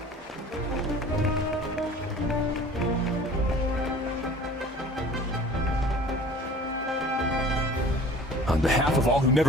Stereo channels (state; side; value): normal; both; correlation 0.46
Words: On behalf of all who